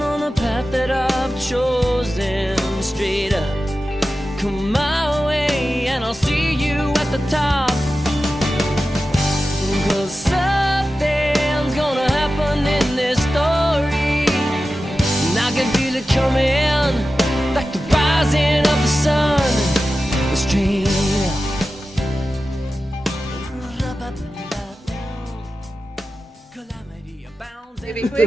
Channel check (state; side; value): normal; both; correlation 0.93